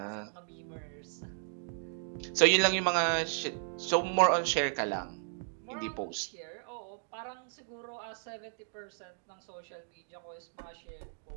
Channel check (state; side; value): silent; left; digital silence